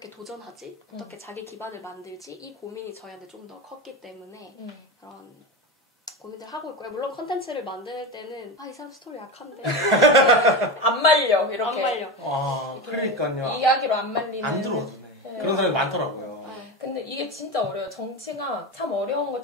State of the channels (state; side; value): normal; both; correlation 0.21